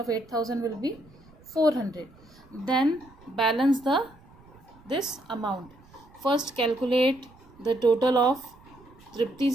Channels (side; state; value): right; noise; rumble, 25 dB below the sound